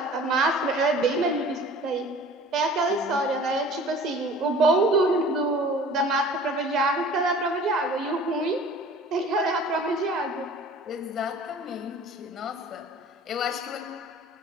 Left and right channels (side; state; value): both; normal; correlation 0.45